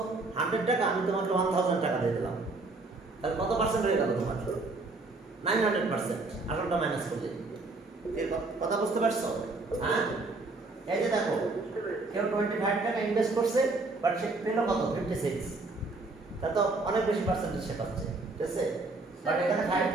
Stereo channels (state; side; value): quieter; left; 3.3 dB